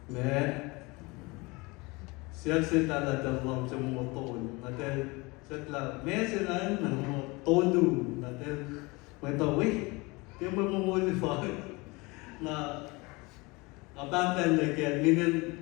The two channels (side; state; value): right; quieter; 25.2 dB